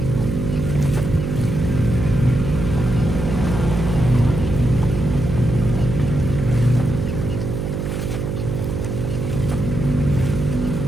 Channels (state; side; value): noise; right; hum, 3 dB below the sound